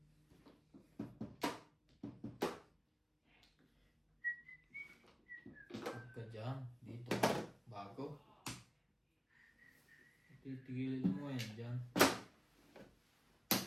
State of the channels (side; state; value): both; identical; correlation 1.00